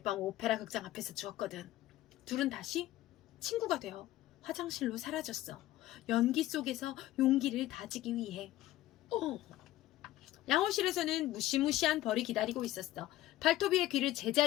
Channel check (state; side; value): quieter; right; 15.0 dB